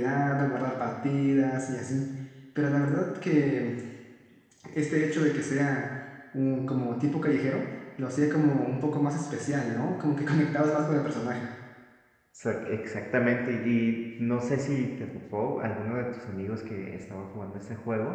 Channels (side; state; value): both; identical; correlation 1.00